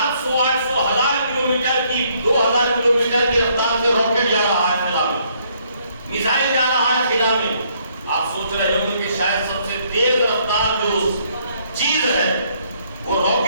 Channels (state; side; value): inverted; both; correlation -0.68